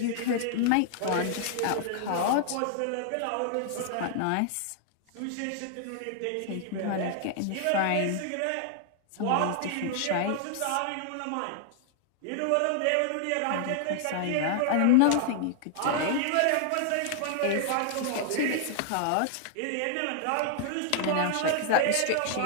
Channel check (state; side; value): different; both; correlation 0.00